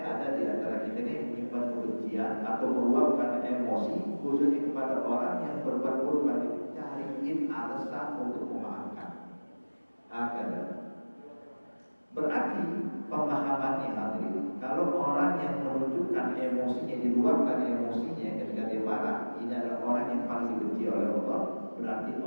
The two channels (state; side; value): inverted; both; correlation -1.00